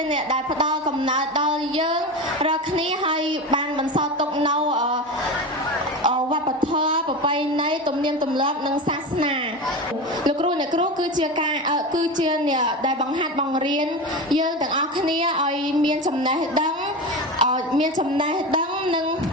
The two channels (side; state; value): both; normal; correlation 0.24